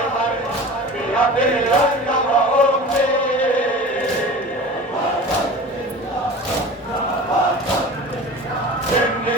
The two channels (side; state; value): both; normal; correlation 0.36